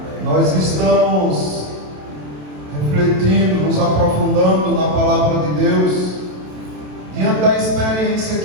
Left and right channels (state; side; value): late; left; 27 ms